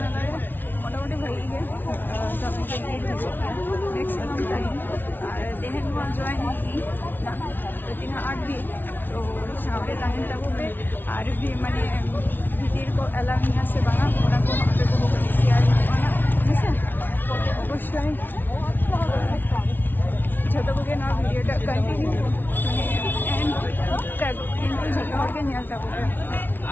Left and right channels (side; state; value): right; late; 0.093 ms